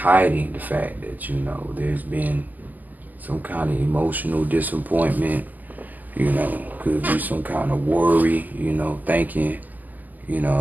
the fact that, there's been some kind of emotional disappointment, could be some kind of worry, thinking,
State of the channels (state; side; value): late; left; 0.083 ms